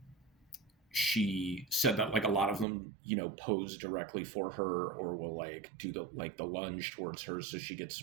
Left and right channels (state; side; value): drops out; left; at 2.7 s